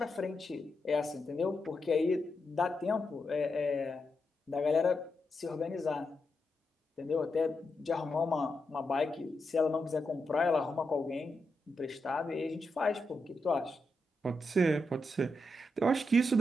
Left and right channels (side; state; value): both; normal; correlation 0.85